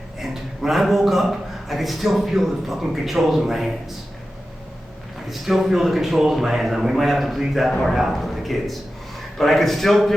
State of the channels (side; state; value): both; normal; correlation 0.93